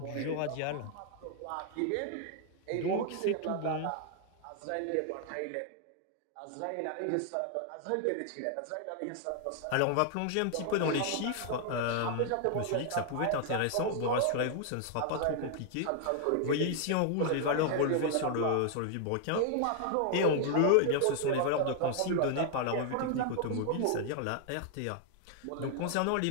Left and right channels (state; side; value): different; both; correlation 0.00